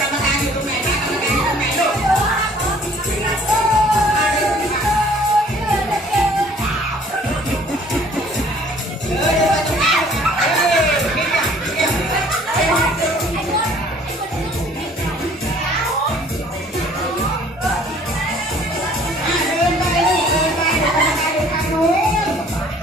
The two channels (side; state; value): both; normal; correlation 0.55